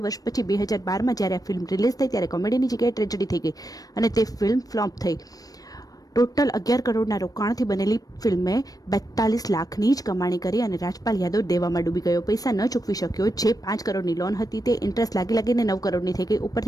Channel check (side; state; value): right; late; 0.18 ms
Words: વર્ષ પછી 2012માં જ્યારે આ ફિલ્મ રિલીઝ થઈ ત્યારે કોમેડીની જગ્યાએ ટ્રેજેડી થઈ ગઈ અને તે ફિલ્મ ફ્લોપ થઈ. ટોટલ 11 કરોડના રોકાણથી બનેલી ફિલ્મે 42 લાખની જ કમાણી કરી અને રાજપાલ યાદવ દેવામાં ડૂબી ગયો. પૈસા ન ચૂકવી શક્યો. જે 5 કરોડની લોન હતી તે ઇન્ટરેસ્ટ લાગીને 9 કરોડની થઈ ગઈ.